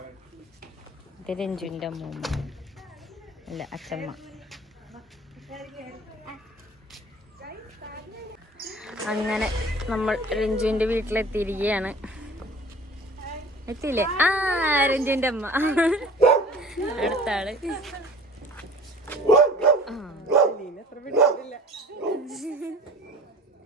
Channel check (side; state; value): both; normal; correlation 0.44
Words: ഇത് രഞ്ജുവിന്റെ അമ്മൂമ്മ അല്ല അച്ഛമ്മ. അങ്ങനെ നമ്മൾ രഞ്ജുവിന്റെ വീട്ടിലെത്തിയിരിക്കുകയാണ്. എത്തിയില്ലേ? രഞ്ജുവിന്റെ അമ്മ അടുത്ത ആള്.